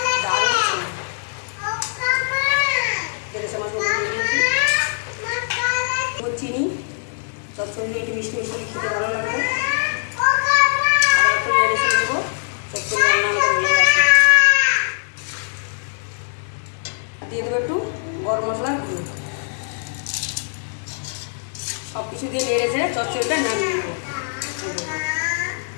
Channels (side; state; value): right; silent; 65 dB below the other